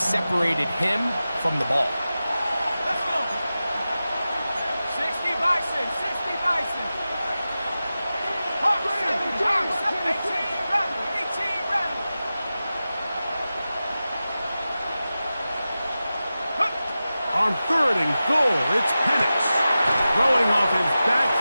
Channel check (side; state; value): both; inverted; correlation -0.94